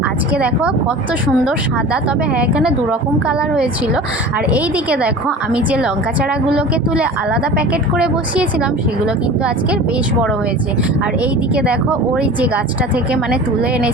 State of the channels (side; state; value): both; normal; correlation 0.38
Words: আজকে দেখো কত সুন্দর সাদা, তবে হ্যাঁ এখানে দুরকম কালার হয়েছিল। আর এই দিকে দেখো আমি যে লঙ্কা চারাগুলোকে তুলে আলাদা প্যাকেট করে বসিয়েছিলাম, সেগুলো কিন্তু আজকের বেশ বড় হয়েছে। আর এই দিকে দেখো ওই যে গাছটা থেকে তুলে